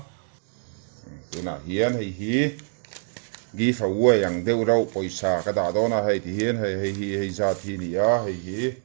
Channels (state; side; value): silent; left; 62 dB below the other